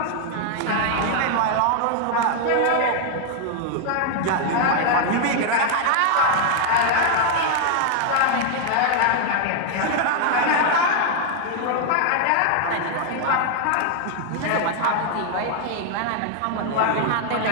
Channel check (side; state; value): both; different; correlation 0.00